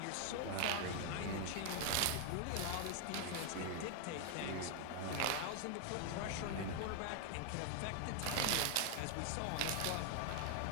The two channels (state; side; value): different; both; correlation 0.00